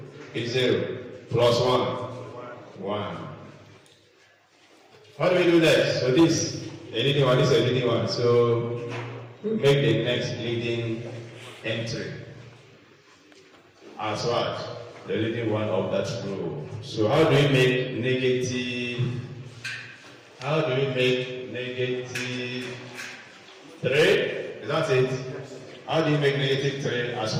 is 0 plus 1. How do we do that? So this a leading one, this is a leading one. So we make the next leading entry as what? The leading one of that row. So how do we make negative 3? Is that it? How do you make negative 3 as 1?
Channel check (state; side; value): identical; both; correlation 1.00